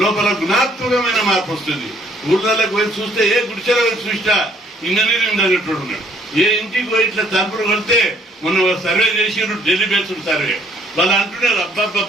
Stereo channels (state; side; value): normal; both; correlation 0.63